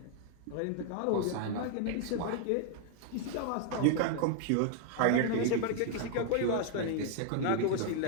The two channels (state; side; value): different; both; correlation 0.00